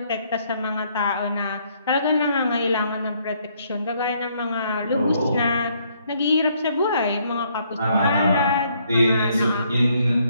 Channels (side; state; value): both; inverted; correlation -0.69